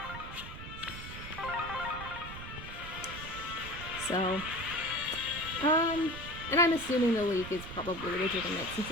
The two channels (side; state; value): right; noise; rumble, 11 dB below the sound